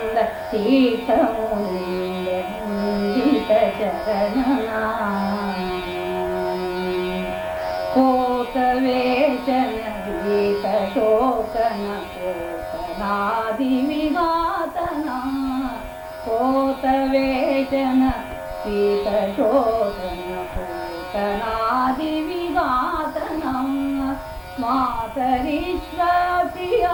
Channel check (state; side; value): identical; both; correlation 1.00